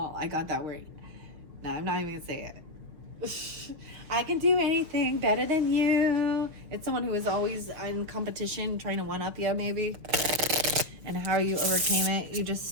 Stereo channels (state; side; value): late; left; 6.1 ms